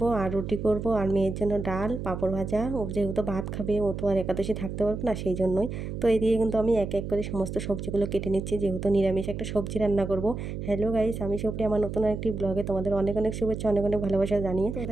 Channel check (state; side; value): noise; right; hum, 6 dB below the sound